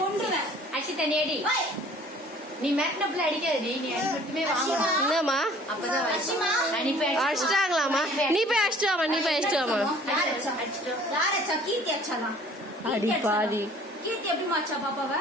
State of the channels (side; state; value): both; normal; correlation 0.52